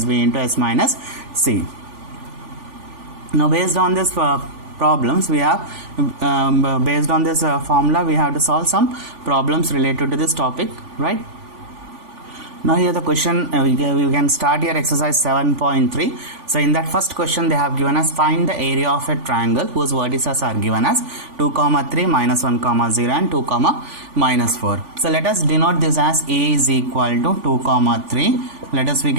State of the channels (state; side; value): late; left; 3.5 ms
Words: B into S minus C. Now based on this problems we have based on this formula we have to solve some problems related to this topic, right? Now here the question, we can start here exercise 7.3. So in that first question they have given us find the area of a triangle whose vertices are given as 2, 3, minus 1, 0 and 2, minus 4. So let us denote this as A is equal to 2, 3. Let us, we